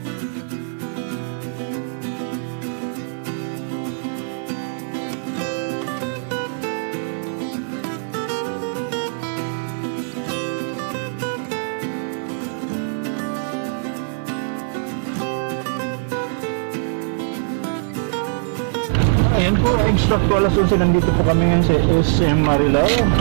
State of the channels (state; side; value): silent; left; 64 dB below the other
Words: Ayan po, exact po alas 11 nandito po kami ngayon sa SM Marilao.